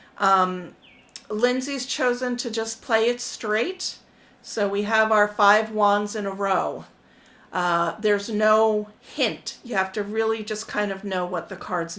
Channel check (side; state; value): both; identical; correlation 1.00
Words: Lindsay's chosen to just play it straight. So we have our 5 wands in a row. There's no hint. You have to really just kind of know what the cards